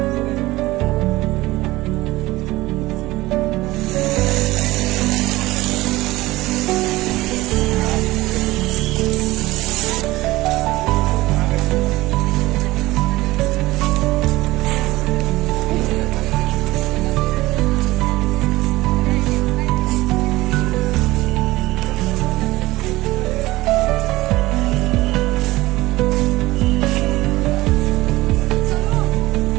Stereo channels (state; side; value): quieter; left; 18.7 dB